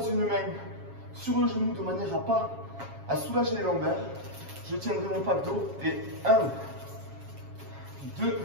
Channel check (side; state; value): left; late; 7.3 ms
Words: une main sur le genou de manière à soulager les lombaires. Je tiendrai mon pack d'eau et 1, 2,